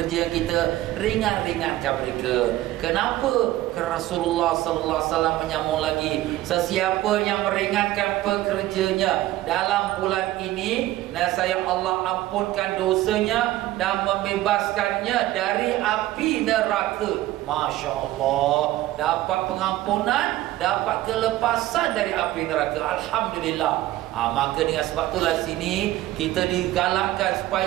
kita ringan-ringankan mereka. Kenapa? Kerana Rasulullah sallallahu alaihi wasallam menyambung lagi, sesiapa yang meringankan pekerjanya dalam bulan ini, nescaya Allah ampunkan dosanya dan membebaskannya dari api neraka. Masya Allah, dapat pengampunan, dapat kelepasan dari api neraka. Alhamdulillah. Maka dengan sebab itulah sini kita digalakkan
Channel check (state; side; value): quieter; left; 15.6 dB